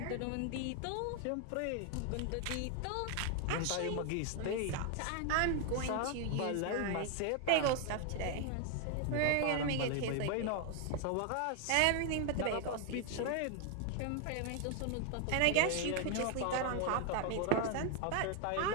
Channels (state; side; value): different; both; correlation 0.00